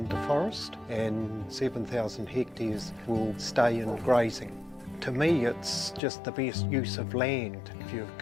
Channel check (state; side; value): drops out; right; at 6.0 s